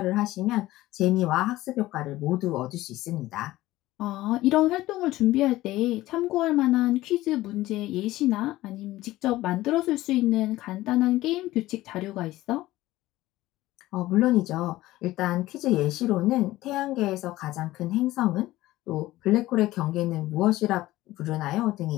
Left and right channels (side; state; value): right; quieter; 16.8 dB